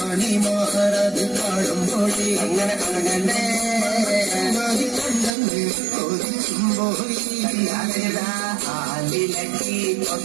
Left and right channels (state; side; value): drops out; left; at 5.3 s